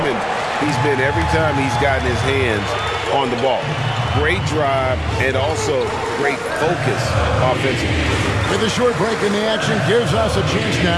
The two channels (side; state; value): both; identical; correlation 1.00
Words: he's been every time he's gotten his hands on the ball. Great drive and also great focus offensively. With a short break in the action, gives us a chance